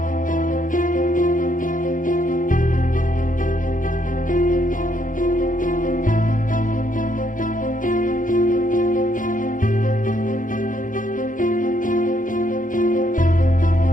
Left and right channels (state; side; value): late; right; 0.38 ms